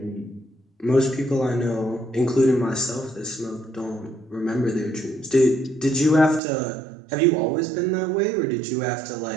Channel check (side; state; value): left; drops out; at 6.4 s